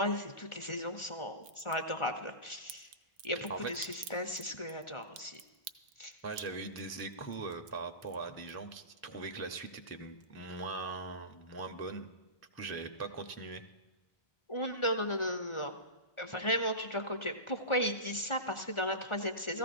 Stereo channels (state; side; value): late; right; 1.4 ms